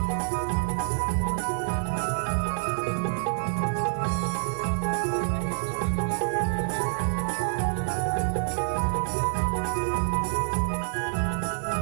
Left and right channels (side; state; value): left; silent; digital silence